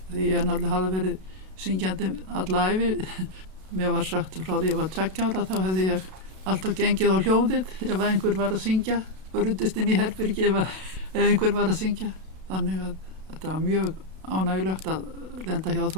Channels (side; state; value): left; late; 32 ms